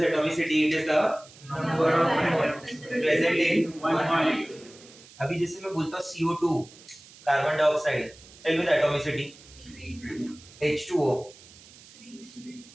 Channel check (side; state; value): right; noise; hiss, 22 dB below the sound